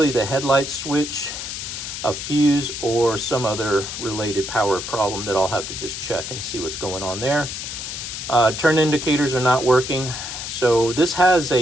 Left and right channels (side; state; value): left; noise; hiss, 7 dB below the sound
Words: the headlight switch, a fuse, or some other related power problem that I'll have to just check and see what's going on there. Turn indicators are not working. So this has